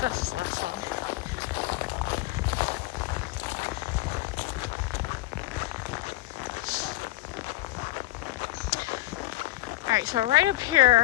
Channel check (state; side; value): quieter; right; 18.1 dB